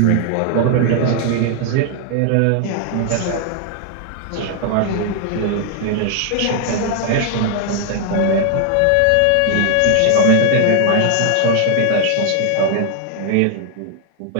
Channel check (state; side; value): different; both; correlation 0.00